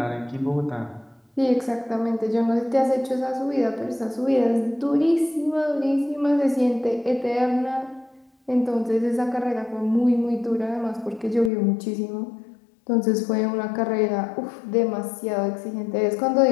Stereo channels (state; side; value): drops out; right; at 11.5 s